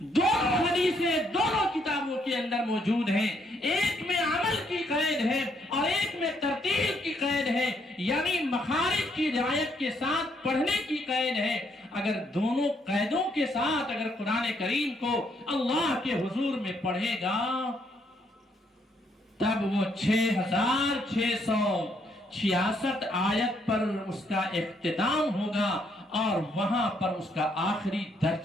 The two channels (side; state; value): both; normal; correlation 0.72